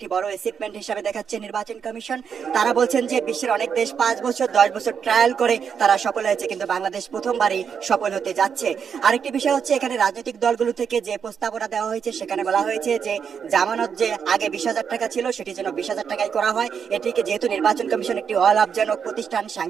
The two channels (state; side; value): quieter; left; 7.0 dB